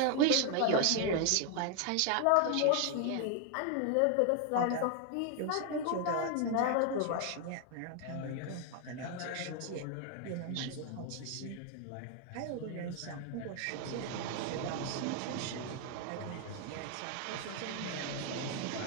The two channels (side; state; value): both; different; correlation 0.01